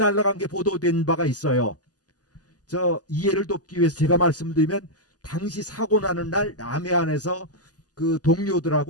게 보도된 바가 있어요. 저 이해를 돕기 위해서 제가 말씀드리면 당시 사고 나는 날 남해안에서 그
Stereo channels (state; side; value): late; right; 0.67 ms